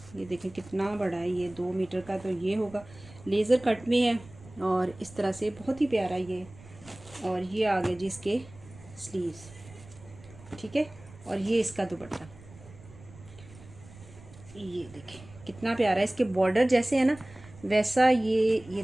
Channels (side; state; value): right; noise; rumble, 20 dB below the sound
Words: ये देखें कितना बड़ा है, ये 2 मीटर का तो ये होगा। लेज़र कट में है, और इस तरह से बहुत ही प्यारा ये। और ये आ गए जी इसके स्लीव्स, ठीक है। और ये इसका दुपट्टा, ये देखें कितना प्यारा है। इसके बॉर्डर जैसे है ना वैसा ये